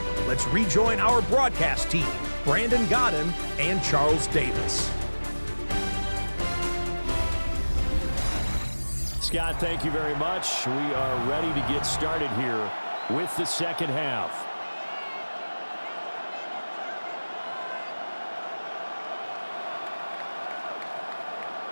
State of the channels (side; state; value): both; inverted; correlation -1.00